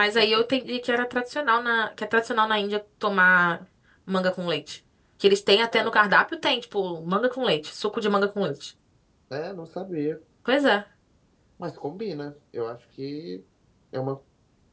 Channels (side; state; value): both; identical; correlation 1.00